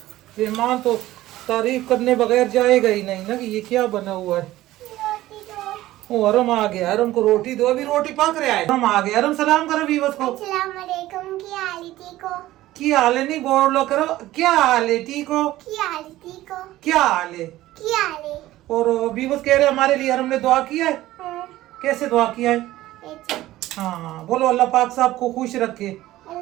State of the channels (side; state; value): left; quieter; 15.8 dB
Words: मेहमान तो तारीफ करने बगैर जाएगा ही नहीं ना कि ये क्या बना हुआ है। ओ अरम आ गया, अरम को रोटी दो, अभी रोटी पक रहा है। हम आ गए। अरम सलाम करो वीवर्स को। अस्सलाम वालेकुम, की हाल है, ठीक हो? की हाल है नहीं बोलो करो, क्या हाल है, ठीक हो? की हाल है, ठीक हो? क्या हाल है? की हाल है? और बीवस कह रहे हमारे लिए हमने दुआ किया है। हाँ, कैसे दुआ किया है? ऐसे हाँ बोलो, अल्लाह पाक साहब को खुश रखे,